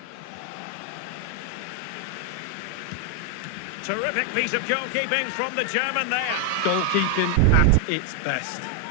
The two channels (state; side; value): different; both; correlation 0.01